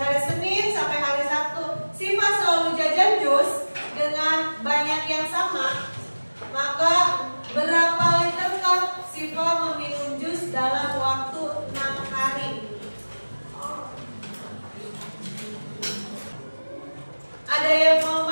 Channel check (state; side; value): inverted; both; correlation -1.00